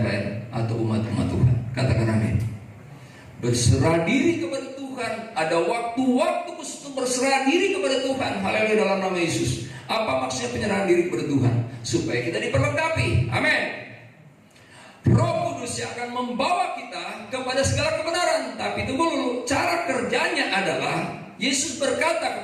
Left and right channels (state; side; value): identical; both; correlation 1.00